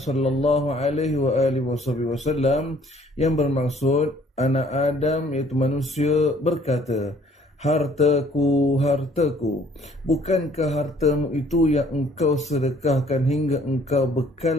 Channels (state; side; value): normal; both; correlation 0.59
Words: alaihi wa alihi wasallam yang bermaksud anak Adam iaitu manusia berkata, hartaku, hartaku, bukankah hartamu itu yang engkau sedekahkan hingga engkau